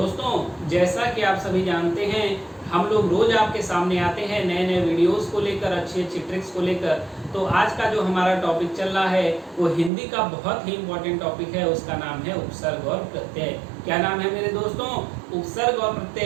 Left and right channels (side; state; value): left; drops out; at 9.9 s